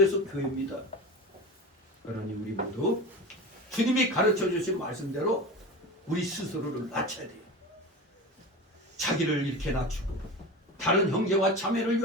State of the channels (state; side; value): normal; both; correlation 0.29